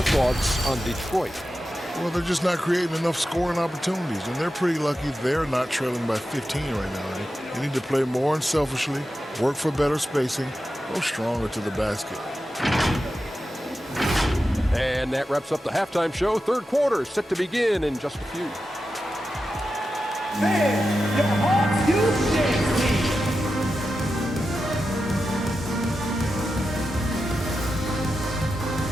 thoughts on Detroit? Well, they're just not creating enough scoring opportunities, and they're pretty lucky they're not trailing by 15 right now. They need to play more unselfishly, work for better spacing, go stronger to the basket. And that wraps up the halftime show. Third quarter set to begin in just a few. Man, your Hawks USA team.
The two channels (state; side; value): normal; both; correlation 0.91